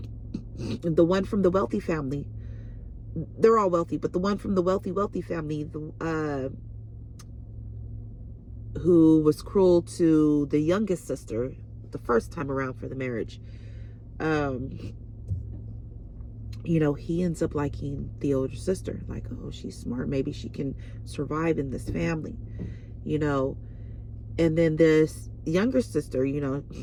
one from the wealthy family, they're all wealthy, but the one from the wealthy family, who was cruel to the youngest sister the first time around for the marriage, you know, he ends up liking the older sister. Like, oh, she's smart. Maybe she can survive in this family, you know. And then this younger sister, you know,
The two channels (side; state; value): both; identical; correlation 1.00